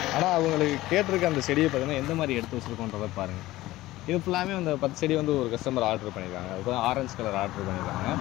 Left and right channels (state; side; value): quieter; right; 17.1 dB